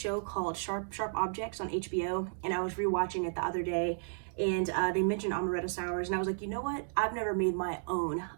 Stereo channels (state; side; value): silent; left; digital silence